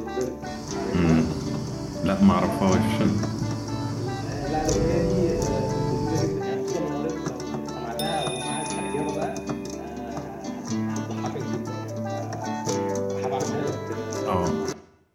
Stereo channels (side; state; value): both; identical; correlation 1.00